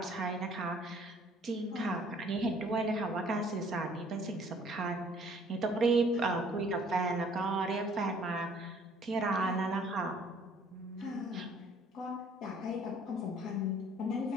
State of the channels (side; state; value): both; normal; correlation 0.58